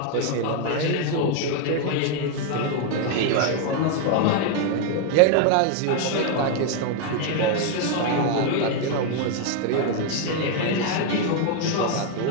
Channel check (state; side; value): different; both; correlation 0.01